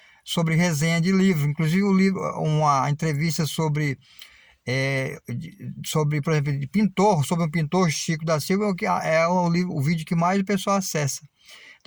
sobre resenha de livros. Inclusive, uma entrevista sobre, por exemplo, de pintor, sobre um pintor, Chico da Silva, é o vídeo que mais o pessoal acessa.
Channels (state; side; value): identical; both; correlation 1.00